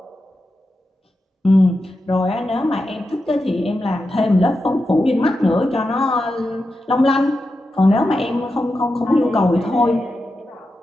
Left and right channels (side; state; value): both; normal; correlation 0.89